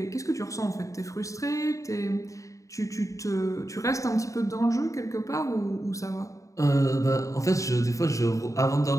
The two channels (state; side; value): late; right; 0.16 ms